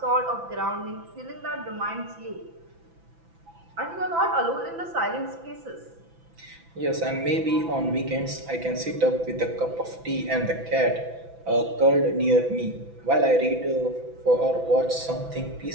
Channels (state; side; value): late; left; 6.0 ms